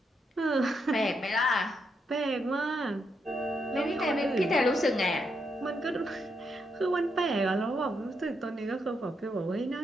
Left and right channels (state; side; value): normal; both; correlation 0.80